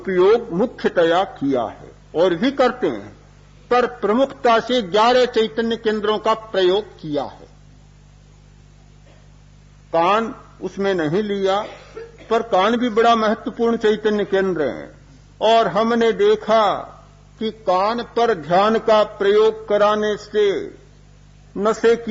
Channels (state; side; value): identical; both; correlation 1.00